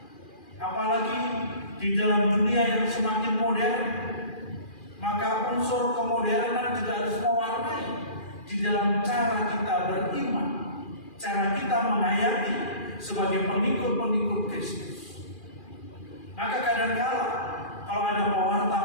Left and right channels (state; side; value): late; right; 2.4 ms